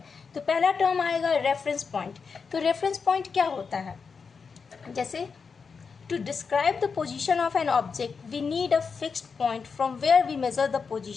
तो पहला टर्म आएगा रेफरेंस पॉइंट। तो रेफरेंस पॉइंट क्या होता है? जैसे to describe the position of an object we need a fixed point from where we measure the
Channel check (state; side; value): quieter; right; 5.4 dB